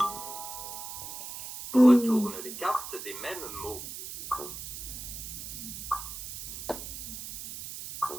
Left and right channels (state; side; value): noise; right; hiss, 8 dB below the sound